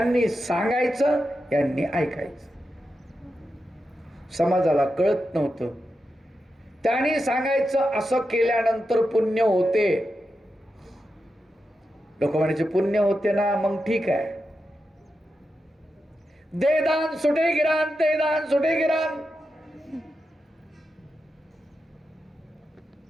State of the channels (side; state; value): both; normal; correlation 0.89